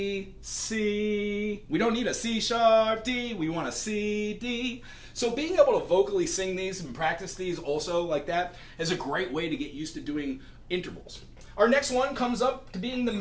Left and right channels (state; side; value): identical; both; correlation 1.00